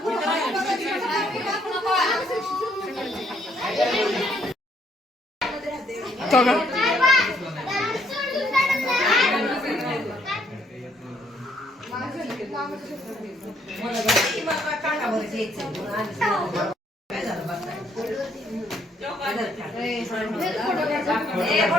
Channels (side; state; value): both; normal; correlation 0.69